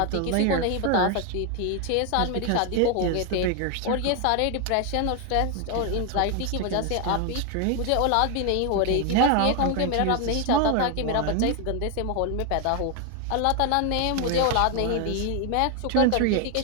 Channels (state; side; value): different; both; correlation 0.01